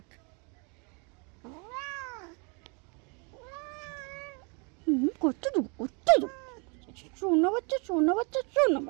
করতে দেবো, করতে দেবো। শোনো বাচ্চা, শোনো বাচ্চা, শোনো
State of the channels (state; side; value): quieter; left; 34.0 dB